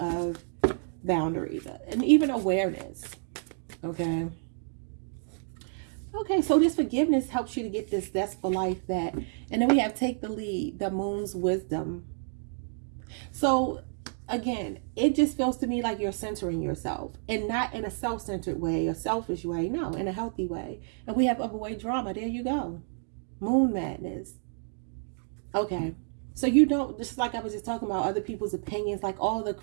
boundaries and even awareness. Okay. Okay, so this forgiveness helps you to get this zestful life back. And then we have take the lead, the moon's wisdom. So again, it just feels to me like you're centering yourself, and not in a self-centered way, a selfish way. No, in a healthy way. And we have overweight drama. There you go. Moon madness. Okay. So you don't, just like I was just talking about other people's opinions, like all the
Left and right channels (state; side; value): silent; left; digital silence